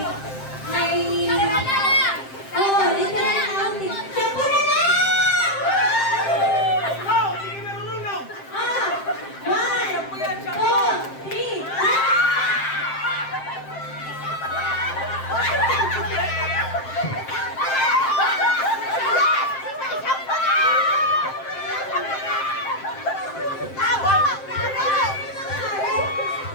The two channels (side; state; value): right; late; 7.6 ms